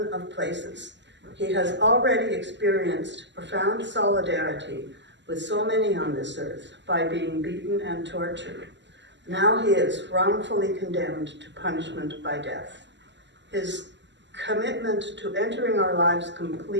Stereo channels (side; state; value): left; late; 0.52 ms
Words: of places. He has already experienced profound solidarity with so many on this earth by being beaten and tortured. Now he is wrongfully condemned to punishment by death. His commitment to entering our lives